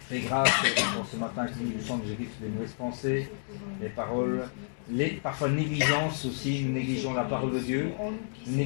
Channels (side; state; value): right; silent; digital silence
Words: Et grâce pour ce matin qui nous semble de Jésus, des mauvaises pensées, les paroles, parfois négligence aussi, nous négligeons la parole de Dieu, nous